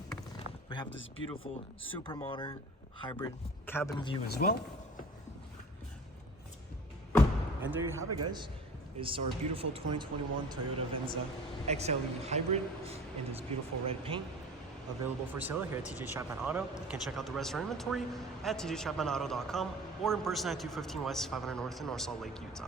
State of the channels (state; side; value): normal; both; correlation 0.42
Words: We have this beautiful, super modern hybrid cabin view as well. And there you have it, guys. It's our beautiful 2021 Toyota Venza XLE Hybrid in this beautiful red paint, available for sale here at TJ Chapman Auto. You can check out the rest of our inventory at tjchapmanauto.com or in person at 215 West 500 North in North Salt Lake,